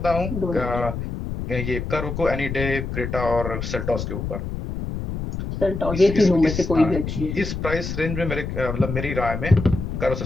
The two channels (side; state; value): left; noise; rumble, 5 dB below the sound